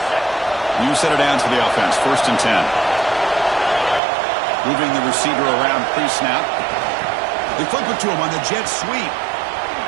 You set it down to the offense. 1st and 10. Moving the receiver around pre-snap. They flip it to him on the jet sweep.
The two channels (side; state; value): left; drops out; at 4.0 s